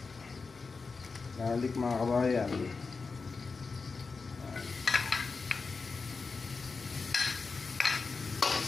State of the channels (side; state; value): right; quieter; 4.5 dB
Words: Garlic mga kabayan.